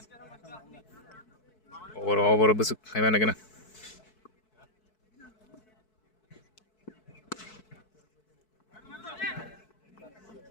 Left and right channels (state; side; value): late; right; 4.6 ms